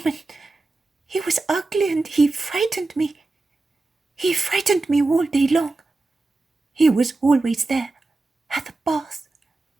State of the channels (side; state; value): left; quieter; 3.3 dB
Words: He was ugly and he frightened me. He frightened me all day long. He was always there, at the bath,